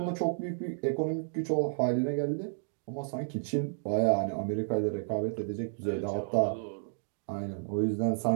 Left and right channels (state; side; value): silent; left; digital silence